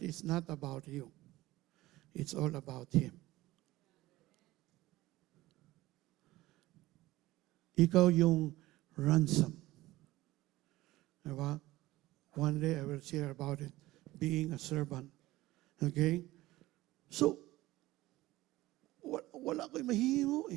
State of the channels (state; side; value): quieter; left; 17.6 dB